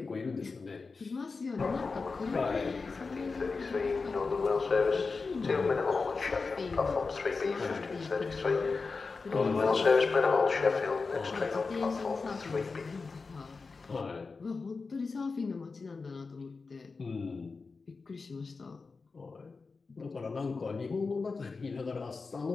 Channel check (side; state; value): right; quieter; 4.3 dB